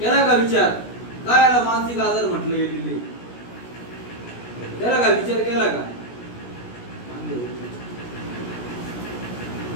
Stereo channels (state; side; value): late; right; 17 ms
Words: केला का विचार? काय याला मानसिक आजार म्हटले गेलेले? केला का विचार केला का?